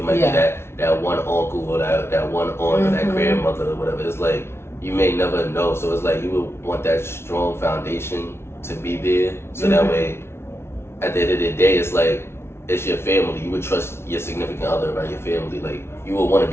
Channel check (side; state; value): right; late; 0.12 ms